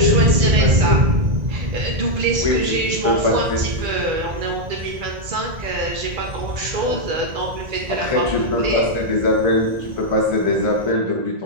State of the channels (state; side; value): late; left; 1.9 ms